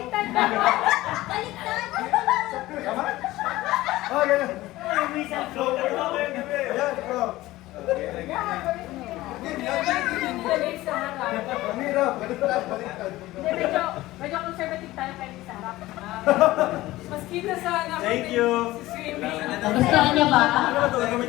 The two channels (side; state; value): right; quieter; 17.4 dB